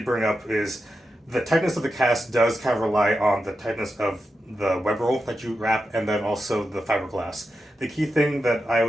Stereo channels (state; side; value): normal; both; correlation 0.89